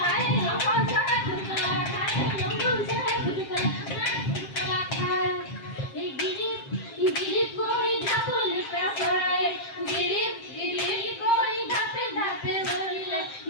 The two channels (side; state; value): right; late; 7.5 ms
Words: আমার সারা খুদলা খায় লম্বন সারা খুদলা খায় এই গিরিপ কই ধাপলে পেছড়ায় গিরিপ কই ধাপে ধাপে বলিলে